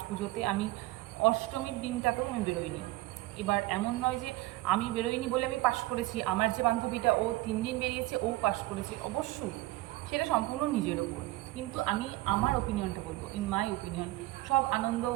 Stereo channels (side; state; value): left; quieter; 18.5 dB